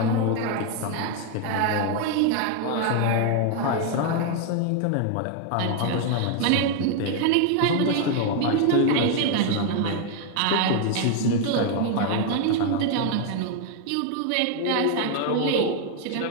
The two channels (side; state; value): both; different; correlation 0.00